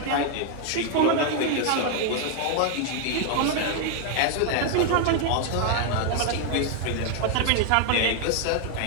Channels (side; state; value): both; different; correlation 0.00